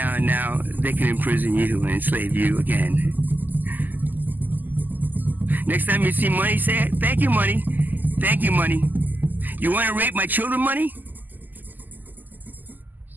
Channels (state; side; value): late; left; 0.085 ms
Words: Now they can imprison you and enslave you again. Next time you see money, say, thank you, money. Thank you, money. You want to rape my children, money?